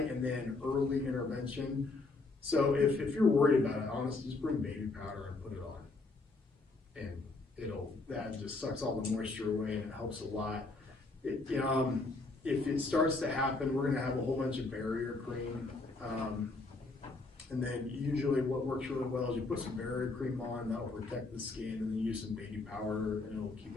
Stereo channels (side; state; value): right; quieter; 3.5 dB